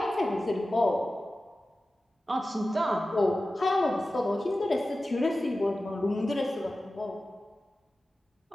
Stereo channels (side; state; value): both; normal; correlation 0.95